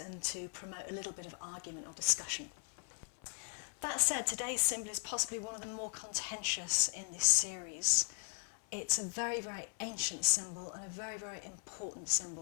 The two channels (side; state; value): right; silent; 52 dB below the other